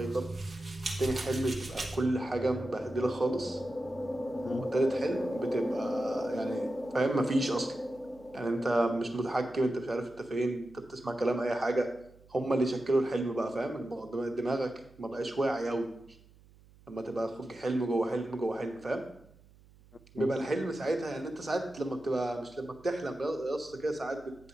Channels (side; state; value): right; noise; hum, 26 dB below the sound